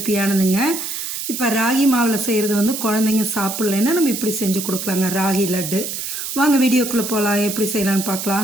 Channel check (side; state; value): right; noise; hiss, 5 dB below the sound